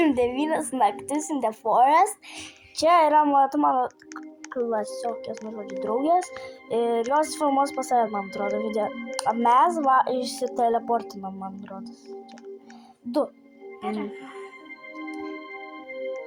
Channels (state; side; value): identical; both; correlation 1.00